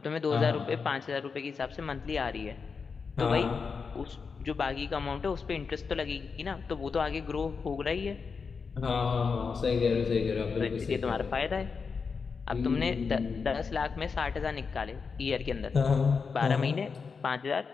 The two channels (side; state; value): right; quieter; 5.3 dB